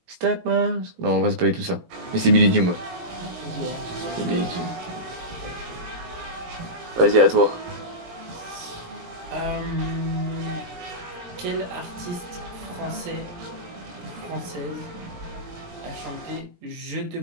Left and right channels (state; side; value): late; left; 17 ms